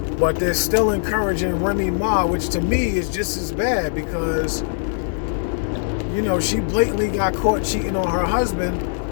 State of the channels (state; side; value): silent; right; 60 dB below the other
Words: but they're still encouraging Remy Ma, which to me is just as bad, because she blatantly got caught cheating on her husband,